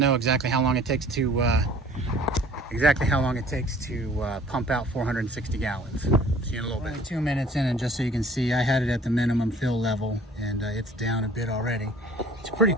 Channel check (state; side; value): normal; both; correlation 0.52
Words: exactly how long it takes to pump out 460 gallons. See you in a little bit. Only 2 minutes in, and just so you can see, I had it at the minimum fill level, and it's down a bit already. It's pretty